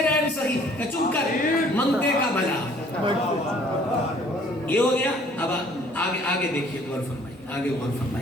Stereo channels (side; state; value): both; normal; correlation 0.57